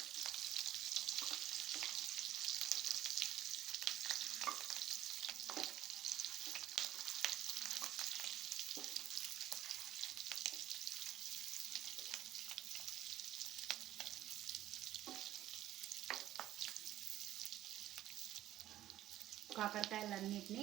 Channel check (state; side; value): quieter; left; 13.4 dB